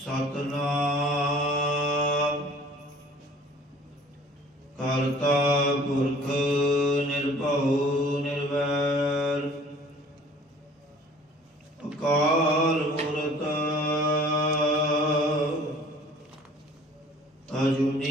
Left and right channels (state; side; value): normal; both; correlation 0.51